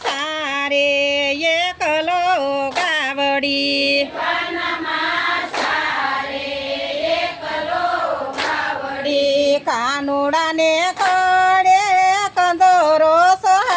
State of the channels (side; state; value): both; identical; correlation 1.00